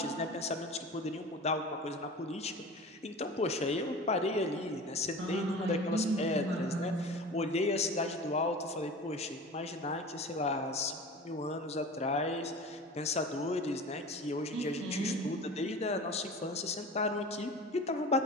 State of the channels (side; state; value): both; normal; correlation 0.36